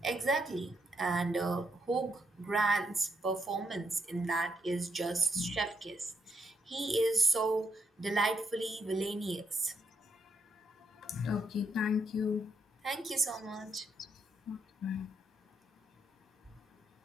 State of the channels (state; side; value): normal; both; correlation 0.77